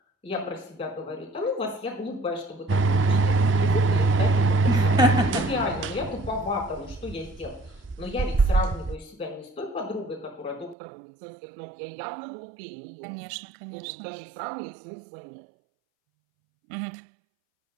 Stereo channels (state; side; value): drops out; left; at 10.8 s